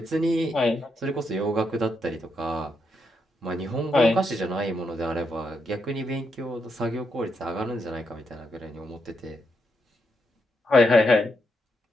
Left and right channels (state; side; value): normal; both; correlation 0.80